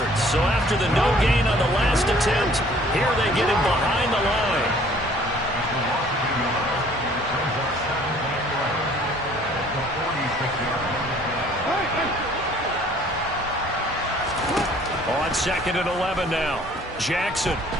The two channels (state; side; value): normal; both; correlation 0.56